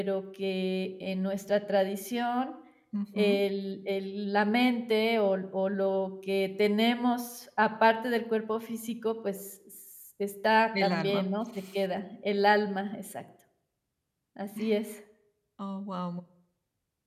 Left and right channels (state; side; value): identical; both; correlation 1.00